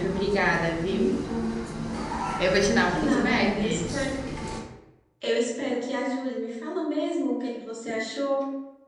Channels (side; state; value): both; identical; correlation 1.00